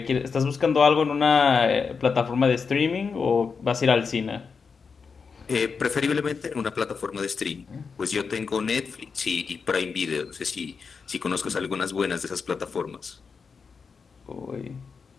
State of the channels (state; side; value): quieter; right; 5.4 dB